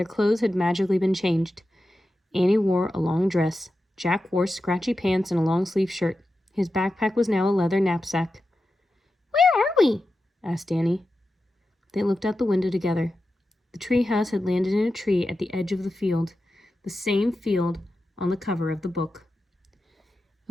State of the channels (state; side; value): normal; both; correlation 0.91